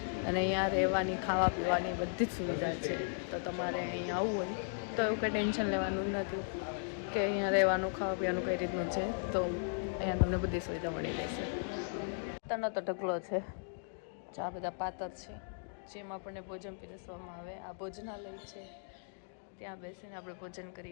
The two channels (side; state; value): right; silent; digital silence